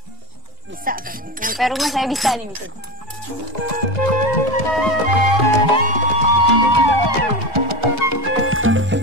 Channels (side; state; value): both; normal; correlation 0.22